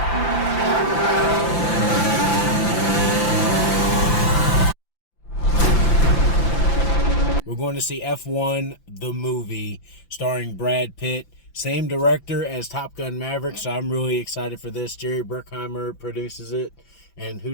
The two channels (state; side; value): late; right; 5.9 ms